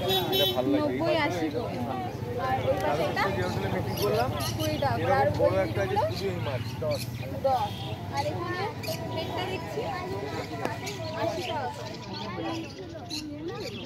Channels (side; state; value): both; identical; correlation 1.00